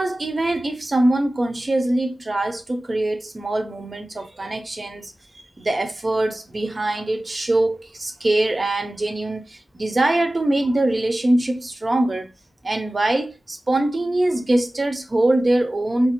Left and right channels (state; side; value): normal; both; correlation 0.97